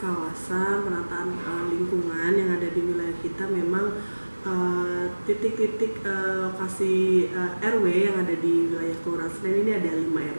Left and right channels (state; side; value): inverted; both; correlation -1.00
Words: kawasan, penataan lingkungan yang ada di wilayah kita, memang titik-titik lokasi RW yang ada di wilayah Kelurahan Senen ini ada 5